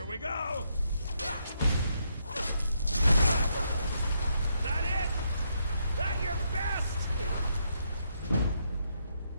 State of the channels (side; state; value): both; inverted; correlation -0.78